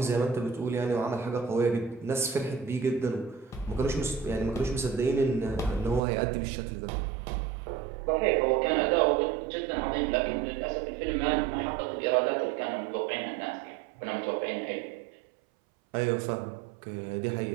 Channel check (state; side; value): drops out; left; at 6.0 s